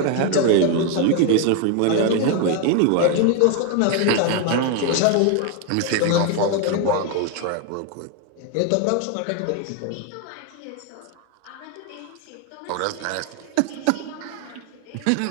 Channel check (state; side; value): different; both; correlation 0.01